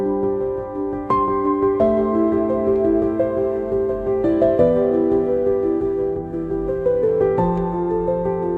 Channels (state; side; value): identical; both; correlation 1.00